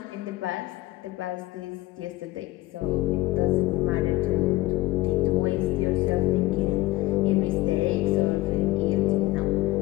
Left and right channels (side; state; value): right; quieter; 18.7 dB